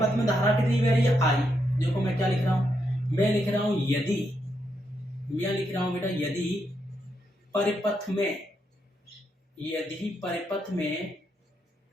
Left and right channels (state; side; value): normal; both; correlation 0.80